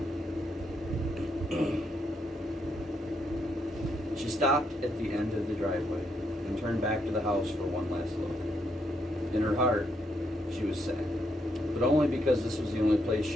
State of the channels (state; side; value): normal; both; correlation 0.77